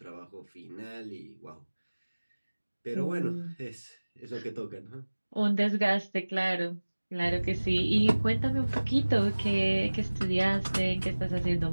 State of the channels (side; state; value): both; inverted; correlation -1.00